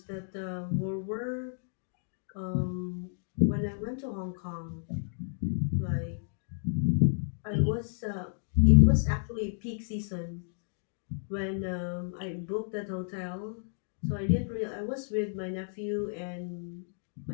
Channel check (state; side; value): silent; right; digital silence